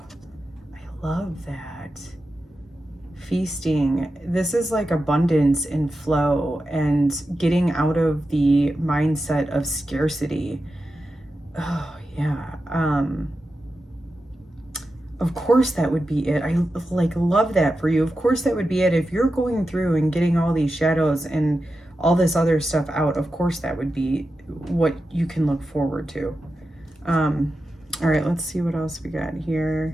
I love that. feasting. This is like abundance and flow and getting out of the mindset of scarcity. Oh, yeah. Of course that would be it. I like love that for you. Of course that would be it. If you're going through and getting all these shadows and all this other stuff out, of course that would be what you can look forward to. All right, let's see what else we got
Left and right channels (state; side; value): normal; both; correlation 0.91